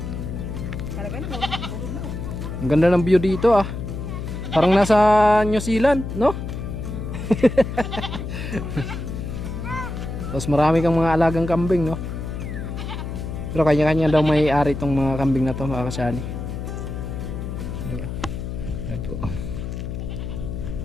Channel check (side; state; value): left; noise; hum, 6 dB below the sound